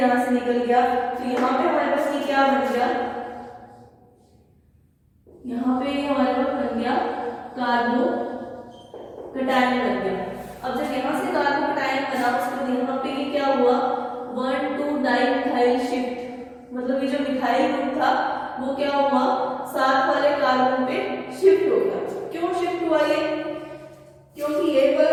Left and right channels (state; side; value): identical; both; correlation 1.00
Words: से निकल गया। तो यहाँ पे हमारे पास ये क्या बन गया, यहाँ पे हमारे पास बन गया कार्बोकैटायन बन गया। अब जब यहाँ से कार्बोकैटायन बना, उसके बाद यहाँ पे ये क्या हुआ, 1,2-डाइमिथाइल शिफ्ट, मतलब ये जो मिथाइल ग्रुप था वो क्या हुआ, साथ वाले कार्बन पे शिफ्ट हो गया। क्यों शिफ्ट हुआ ये, क्योंकि ये